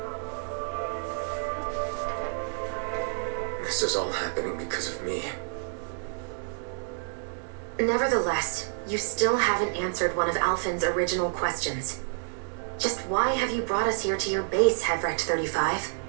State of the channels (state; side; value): silent; left; digital silence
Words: This is all happening because of me. Nevertheless, you still haven't answered one of Alphen's original questions. Just why have you brought us here to your base, Hevrect 35?